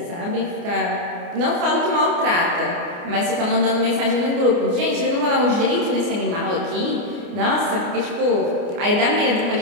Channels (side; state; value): left; late; 29 ms